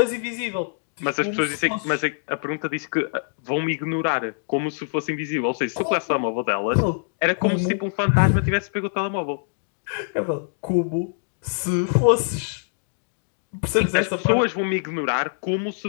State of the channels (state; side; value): silent; right; digital silence